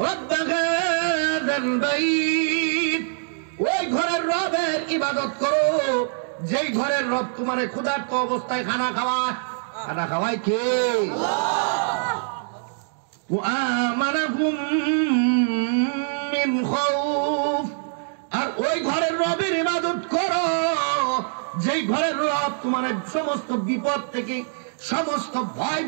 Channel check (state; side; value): silent; left; digital silence